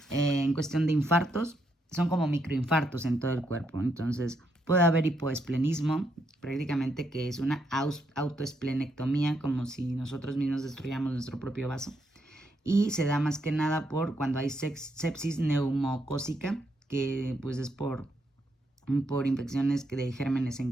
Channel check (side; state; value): both; normal; correlation 0.77